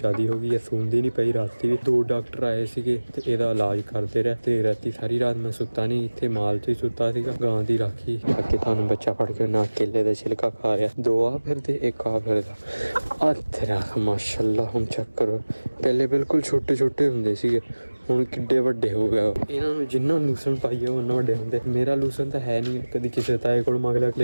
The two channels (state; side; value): inverted; both; correlation -1.00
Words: ਹੋ ਗਈ ਹੈ। ਸੂੰਦੀ ਨਹੀਂ ਪਈ ਰਾਤੀ ਵੀ 2 ਡਾਕਟਰ ਆਏ ਸੀਗੇ ਤੇ ਇਹਦਾ ਇਲਾਜ ਕਰਦੇ ਰਹੇ ਤੇ ਰਾਤੀ ਸਾਰੀ ਰਾਤ ਮੈਂ ਸੁੱਤਾ ਨਹੀਂ ਇੱਥੇ ਮਾਲ 'ਚ ਹੀ ਸੁੱਤਾ ਸੀਗਾ। ਗਾਂ ਦੀ ਰਾਖੀ ਅੱਗੇ ਤੁਹਾਨੂੰ ਬੱਚਾ ਫੜ ਕੇ ਨਾ ਕੇਲੇ ਦਾ ਛਿਲਕਾ ਖਾ ਰਿਹਾ। 2 ਆ ਫਿਰਦੇ 1 ਆ ਫਿਰਦਾ ਆ ਤੇਰਾ ਮਾਸ਼ਾਅੱਲਾ। ਹੁਣ ਚੈੱਕ ਕਰੋ ਪਹਿਲੇ ਬਿਲਕੁਲ ਛੋਟੇ ਛੋਟੇ ਹੁੰਦੇ ਸੀਗੇ ਹੁਣ ਕਿੱਡੇ ਵੱਡੇ ਹੋ ਗਏ। ਇਹਨਾਂ ਨੂੰ ਜਿੰਨਾ ਲੂਸਣ ਪਾਈਏ ਉਹਨਾਂ ਵੱਡੇ ਹੁੰਦੇ। ਮੇਰਾ ਲੂਸਣ ਤਾਂ ਹੈ ਨਹੀਂ ਕਦੀ ਕਿਸੇ ਤਾਏ ਕੋਲ ਮੰਗ ਲਿਆ